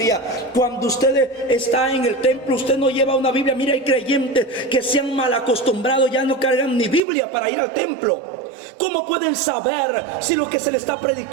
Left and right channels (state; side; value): drops out; left; at 7.0 s